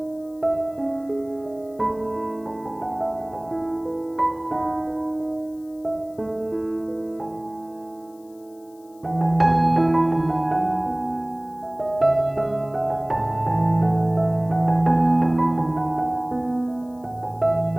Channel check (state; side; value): noise; left; hiss, 30 dB below the sound